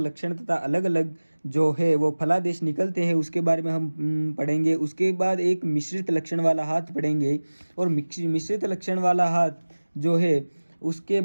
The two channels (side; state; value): both; inverted; correlation -1.00